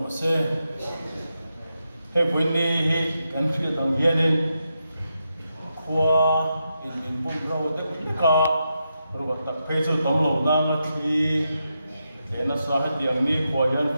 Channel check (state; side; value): inverted; both; correlation -0.86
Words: se he puinni hi kan thri dang hianin khua in bum ro tak ka rồi tập phê cho tấm lầu nam là thì để nó sao hết tiếng đi của dân